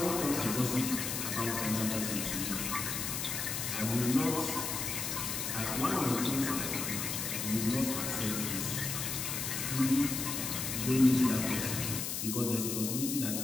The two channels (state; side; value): noise; left; hiss, 2 dB below the sound